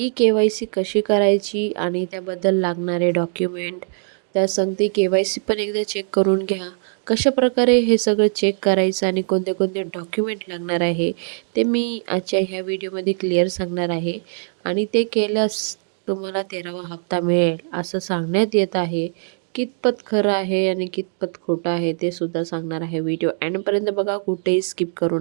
कशी करायची आणि त्याबद्दल लागणारे डॉक्युमेंट, त्या सांगते के-वाय-सी पण एकदा चेक करून घ्या. कशाप्रकारे हे सगळं चेक करायचं आणि कोणते कोणते डॉक्युमेंट लागणार आहे ते मी आजच्या ह्या व्हिडिओमध्ये क्लिअर सांगणार आहे. आणि ते केल्यास तुम्हाला 13वा हप्ता मिळेल असं सांगण्यात येत आहे. कितपत खरं आहे आणि कितपत खोटं आहे ते सुद्धा सांगणार आहे. व्हिडिओ एंडपर्यंत बघा, कुठेही स्किप करू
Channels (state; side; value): silent; left; 65 dB below the other